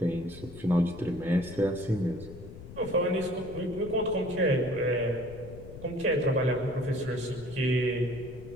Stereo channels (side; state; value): left; noise; rumble, 15 dB below the sound